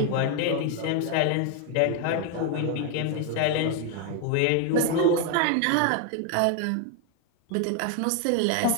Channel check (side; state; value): both; different; correlation 0.01